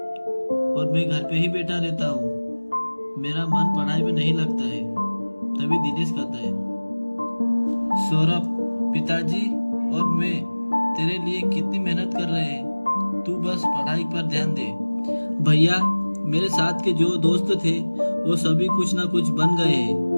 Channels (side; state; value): both; inverted; correlation -1.00